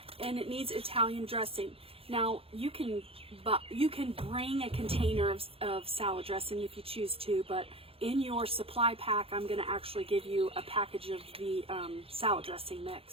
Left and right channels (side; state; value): left; late; 0.27 ms